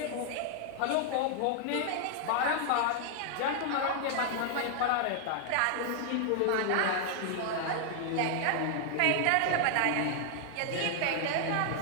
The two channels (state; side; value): different; both; correlation 0.00